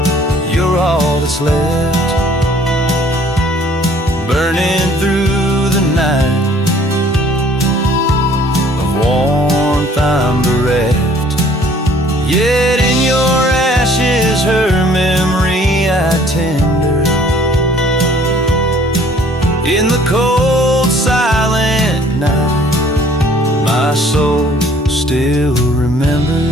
you're all that's left, burning through the night. Of warmth I'm bereft, yet in your ashes her memory I tender. In the cold, silent night, my soul still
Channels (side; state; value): both; normal; correlation 0.57